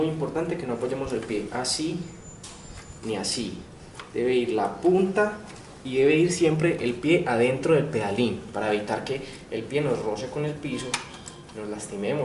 importante que no apoyemos el pie así ni así. Debe ir la punta y debe ir siempre el pie adentro del pedalín, para evitar que el pie nos roce con el piso, nos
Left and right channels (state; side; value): identical; both; correlation 1.00